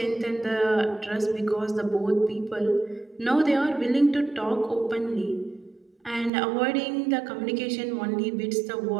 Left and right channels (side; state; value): left; drops out; at 6.3 s